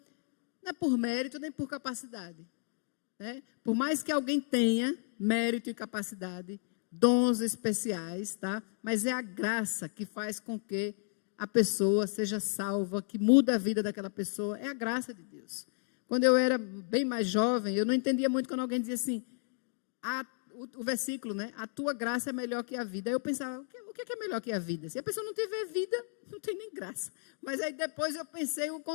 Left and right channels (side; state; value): right; silent; 56 dB below the other